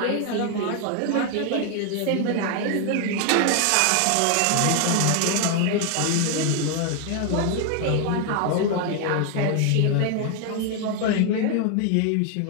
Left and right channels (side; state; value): both; different; correlation 0.00